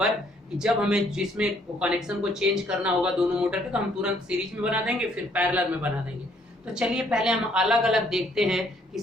कि जब हमें जिसमें कनेक्शन को चेंज करना होगा दोनों मोटर के, तो हम तुरंत सीरीज में बना देंगे, फिर पैरेलल में बना देंगे। तो चलिए पहले हम अलग अलग देखते हैं कि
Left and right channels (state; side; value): normal; both; correlation 0.66